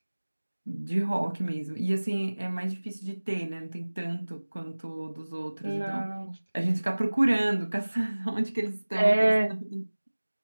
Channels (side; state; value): both; inverted; correlation -1.00